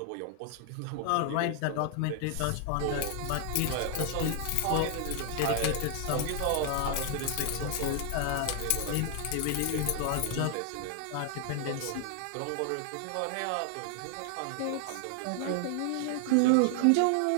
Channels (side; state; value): both; different; correlation 0.00